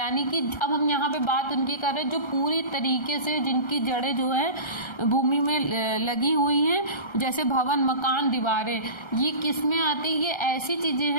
कि अब हम यहाँ पे बात उनकी कर रहे हैं जो पूरी तरीके से, जिनकी जड़ें जो है भूमि में लगी हुई हैं, जैसे भवन, मकान, दीवारें। ये किस में आती है? ये ऐसी चीज़ें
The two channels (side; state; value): right; late; 1.3 ms